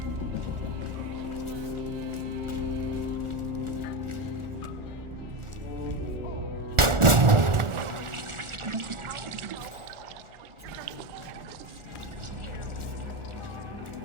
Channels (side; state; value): left; late; 1.4 ms